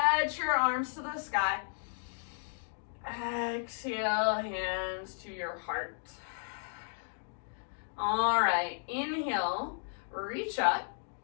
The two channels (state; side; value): silent; right; digital silence